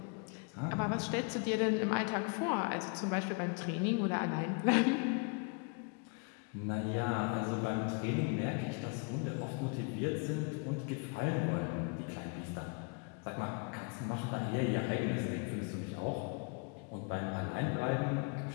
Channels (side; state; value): right; quieter; 34.2 dB